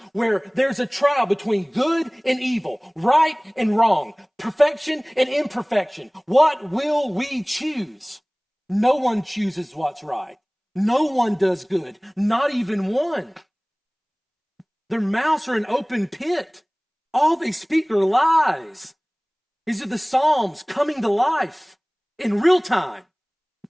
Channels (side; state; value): both; identical; correlation 1.00